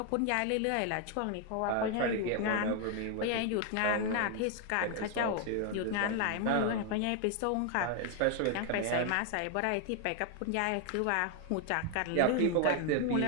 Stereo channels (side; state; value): both; different; correlation 0.01